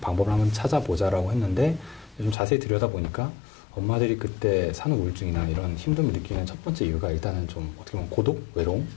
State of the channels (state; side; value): drops out; right; at 2.4 s